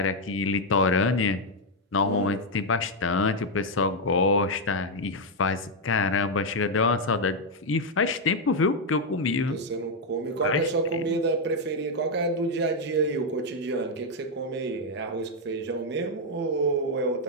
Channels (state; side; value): normal; both; correlation 0.01